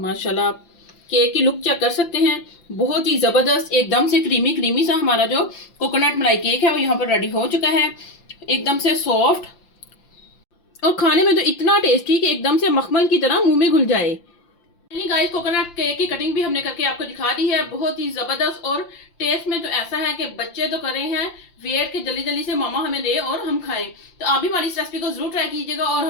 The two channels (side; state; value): right; late; 5.8 ms